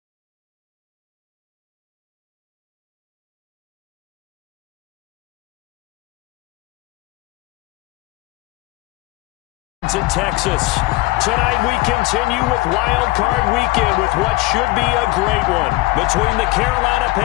In Texas. Tonight we continue with Wild Card Weekend with what should be a great one between the Carolina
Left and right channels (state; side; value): quieter; right; 20.3 dB